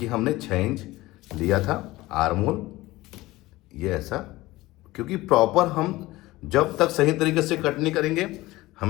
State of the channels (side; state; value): right; quieter; 18.7 dB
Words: हमने 6 इंच लिया था आर मोल, ये ऐसा, क्योंकि प्रॉपर हम जब तक सही तरीके से कट नहीं करेंगे